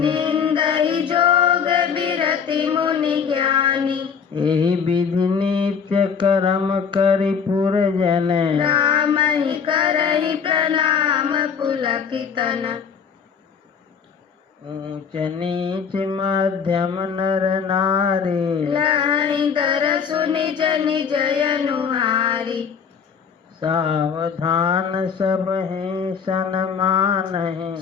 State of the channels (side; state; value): right; quieter; 6.6 dB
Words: जोग बिरति मुनि ज्ञानी एहि विधि नित्य कर्म करि पुरजन राम ही करहि प्रणाम पुलकितन ऊंच नीच मध्यम नर नारी लहि दर सुनि जनि जयनुहारी सावधान सब हैं सन्मान है